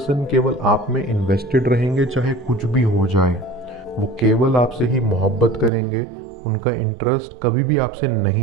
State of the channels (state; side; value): drops out; left; at 5.7 s